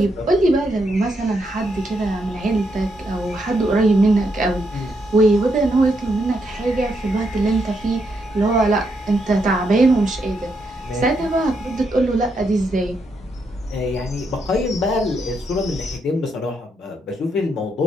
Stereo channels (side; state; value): both; normal; correlation 0.79